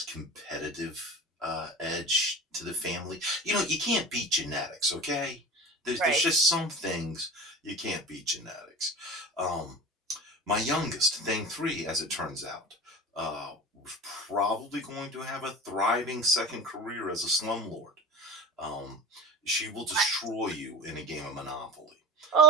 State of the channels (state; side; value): normal; both; correlation 0.32